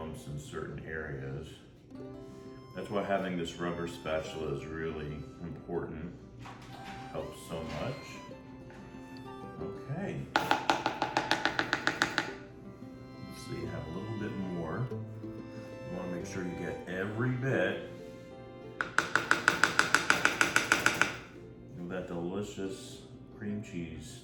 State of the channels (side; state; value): both; identical; correlation 1.00